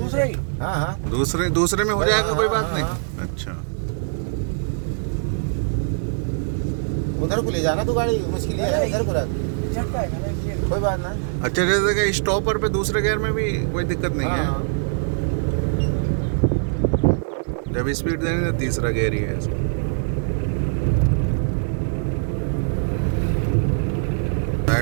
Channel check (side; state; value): left; silent; 56 dB below the other